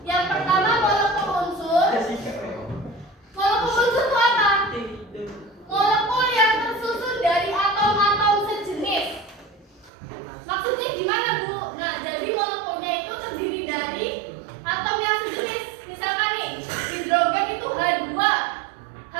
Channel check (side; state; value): left; drops out; at 9.9 s